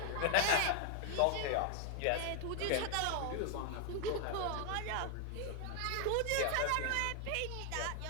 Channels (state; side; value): different; both; correlation 0.00